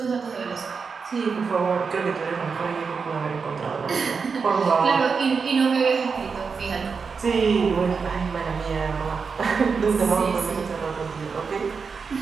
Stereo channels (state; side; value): quieter; left; 5.4 dB